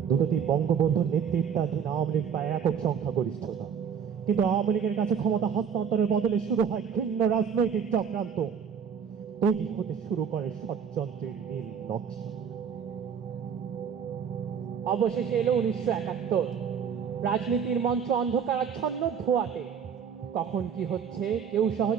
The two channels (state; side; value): quieter; left; 7.2 dB